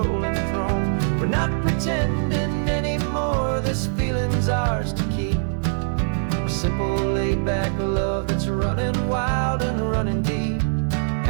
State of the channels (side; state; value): left; silent; digital silence